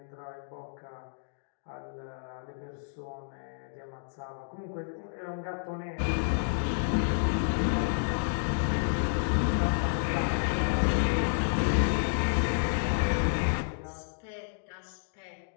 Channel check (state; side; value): silent; right; digital silence